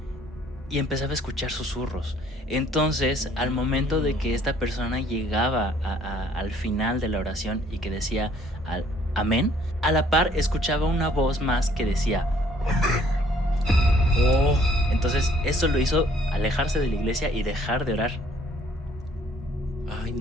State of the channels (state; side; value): normal; both; correlation 0.61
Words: y empezaba a escuchar susurros. Entonces, al momento de que esta persona llegaba al final de la oración y que decía amén, a la par escuchaba una voz más que decía amén. Entonces, eso lo hizo alejarse de la iglesia y dejar de orar. Ay,